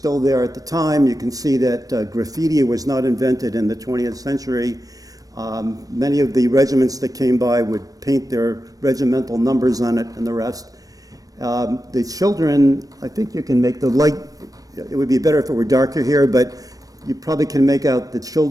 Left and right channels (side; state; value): left; late; 0.18 ms